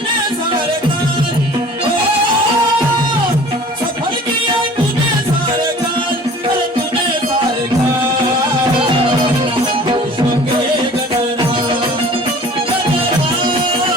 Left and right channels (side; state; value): both; normal; correlation 0.46